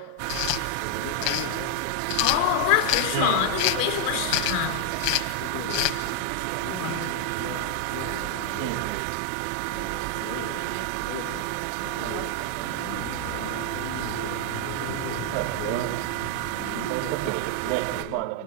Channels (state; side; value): different; both; correlation 0.00